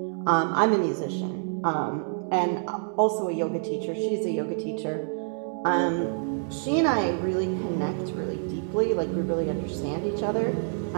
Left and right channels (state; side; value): silent; left; digital silence